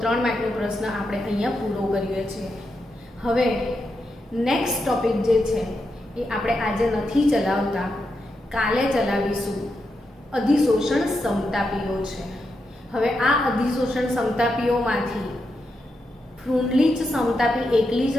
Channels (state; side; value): normal; both; correlation 0.85